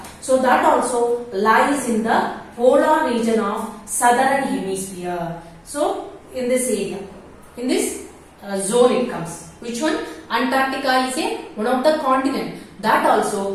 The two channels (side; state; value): both; identical; correlation 1.00